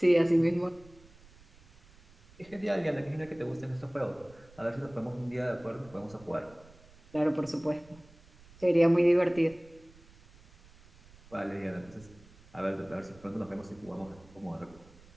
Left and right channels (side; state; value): right; noise; rumble, 25 dB below the sound